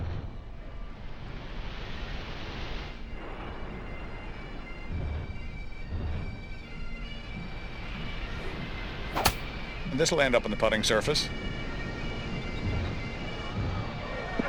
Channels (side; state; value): both; identical; correlation 1.00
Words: And this will end up on the putting surface.